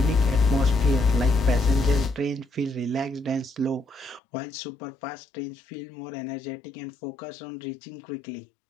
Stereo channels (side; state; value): right; drops out; at 4.2 s